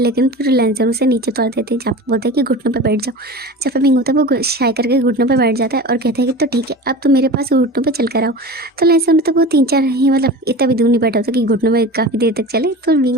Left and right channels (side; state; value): both; normal; correlation 0.33